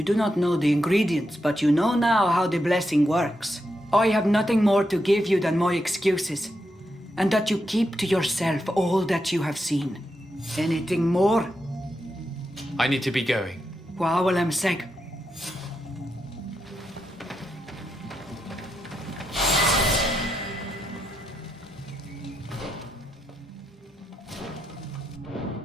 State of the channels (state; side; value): normal; both; correlation 0.84